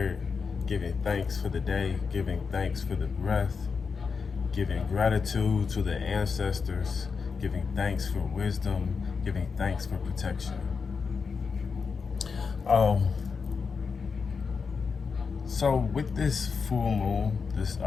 giving thanks for the day, giving thanks for the breath, giving gratitude to the ancestors, giving thanks for wisdom, giving thanks for protection. So with this full moon,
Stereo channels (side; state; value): right; quieter; 5.3 dB